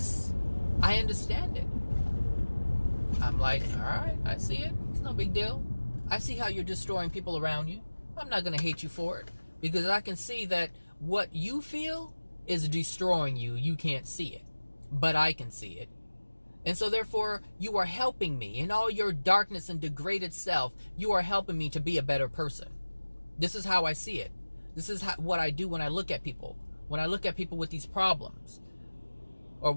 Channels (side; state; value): both; inverted; correlation -1.00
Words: I understand it. I'm like, all right, I see it. It's no big deal. I see how you're destroying people around you. I'm not going to hate you for it because I can see that what you feel is destroying you. You can't see it, but I can see it. And so therefore, you are helping me in all your darkness and degraded self. You are helping me to be a better person. This is how I see it. This is what I do when I look at people. When I look at people with these problems, or